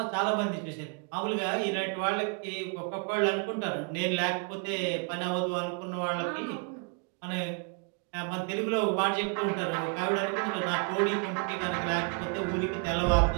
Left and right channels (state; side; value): quieter; left; 36.5 dB